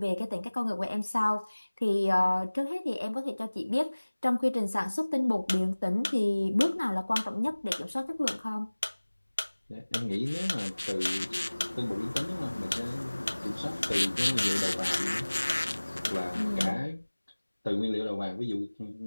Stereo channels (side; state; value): both; inverted; correlation -1.00